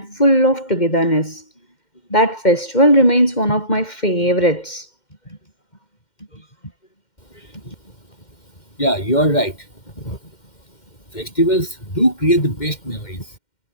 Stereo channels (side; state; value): right; late; 2.1 ms